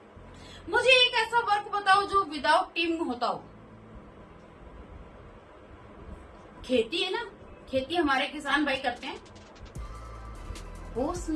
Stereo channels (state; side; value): identical; both; correlation 1.00